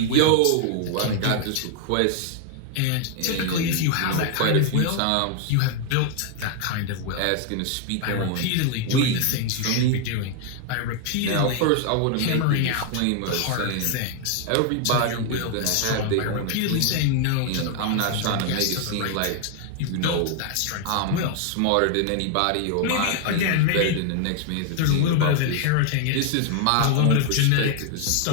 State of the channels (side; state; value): both; different; correlation 0.00